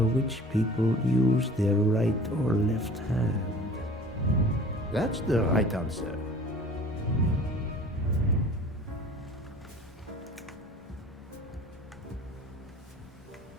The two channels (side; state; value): both; normal; correlation 0.45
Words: which people use their right or left hand. That's the right answer.